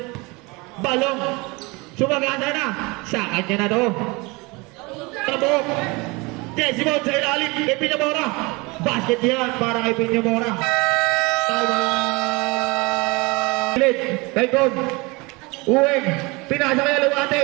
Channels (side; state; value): left; quieter; 25.5 dB